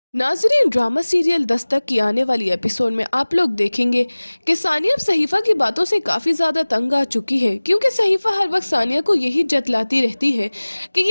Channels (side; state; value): both; inverted; correlation -1.00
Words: नाजरीन, ड्रामा सीरियल दस्तक की आने वाली एपिसोड में आप लोग देखेंगे कि सानिया अब सहीफा की बातों से काफी ज्यादा तंग आ चुकी है, क्योंकि सहीफा हर वक्त सानिया को यही जतलाती रहती है कि